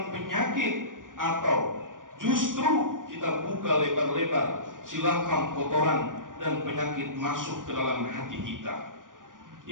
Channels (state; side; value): late; left; 0.88 ms